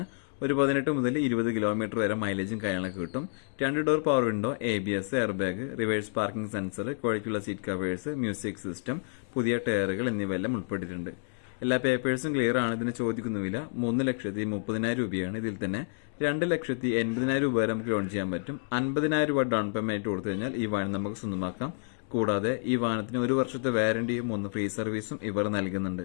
ഒരു 18 മുതൽ 20 കിലോമീറ്റർ വരെ മൈലേജും കാര്യങ്ങളൊക്കെ കിട്ടും. 2 door power window, ABS, air bag, reverse parking sensor, ക്വാളിറ്റിയുള്ള സീറ്റ് കവേഴ്സ്, മ്യൂസിക് സിസ്റ്റം, പുതിയ ടയറുകൾ എന്നിവയെല്ലാം ഉൾപ്പെട്ടിട്ടുണ്ട്. എല്ലാ പേപ്പേഴ്സും ക്ലിയർ ആണ്. ഇതിന് ചോദിക്കുന്ന വില 3,30,000 രൂപയാണ്. ഇതിൽ തന്നെ 2,80,000 രൂപ വരെ നമുക്ക് ലോൺ ചെയ്യാൻ പറ്റും. 50,000 രൂപ ഡൗൺ പേയ്മെന്റ് കൊടുത്തു കഴിഞ്ഞാൽ ഈ വാഹനം നമുക്ക് സ്വന്തമാക്കാം. കൂടാതെ ഈ വാഹനത്തിന് 1 വർഷത്തെ വാറന്റിയും 3 ഫ്രീ സർവീസും ഇവർ നൽകുന്നുണ്ട്.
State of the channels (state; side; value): silent; right; digital silence